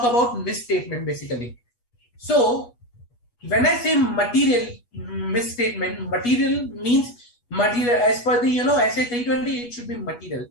about misstatement basically. So when I say material misstatement, material means material as per the SA 320, it should be material.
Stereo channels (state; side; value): late; right; 8.3 ms